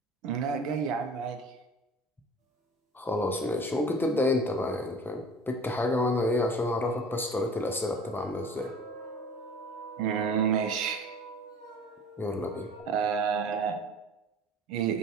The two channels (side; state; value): both; normal; correlation 0.43